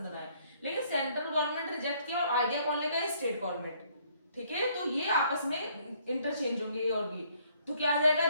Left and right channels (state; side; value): inverted; both; correlation -0.65